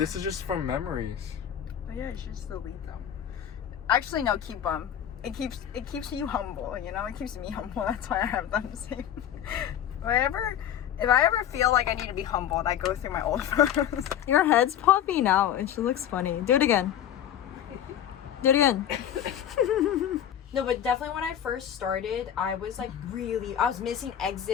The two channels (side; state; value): right; quieter; 10.2 dB